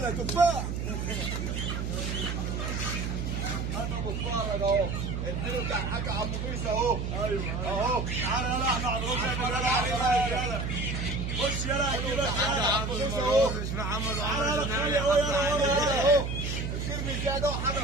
تفاح. انا بتفرج اهو. الفيلم بتاع الحاج عبد القيس اهو. ايوه اهو. تعالى يلا احنا هنروح يلا. خش يلا كده الحاج عبد القيس اهو. مش محمد عمر جنابي اهو. الفيلم زياده وحاجه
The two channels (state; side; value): noise; right; hum, 3 dB below the sound